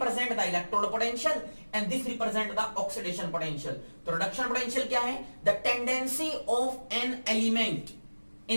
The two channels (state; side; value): inverted; both; correlation -1.00